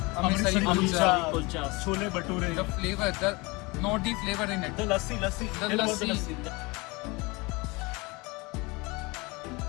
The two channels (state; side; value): quieter; right; 25.5 dB